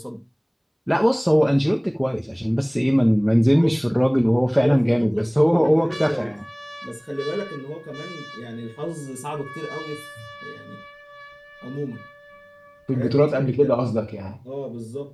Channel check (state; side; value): identical; both; correlation 1.00